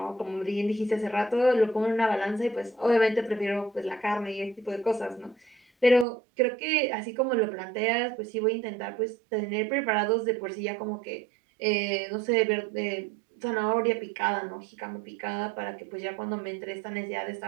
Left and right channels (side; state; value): left; drops out; at 6.1 s